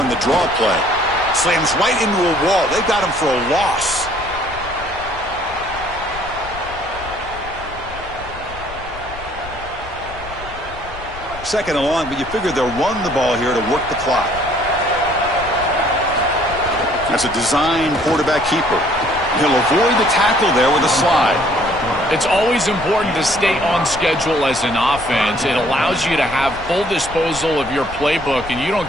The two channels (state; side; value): noise; left; rumble, 15 dB below the sound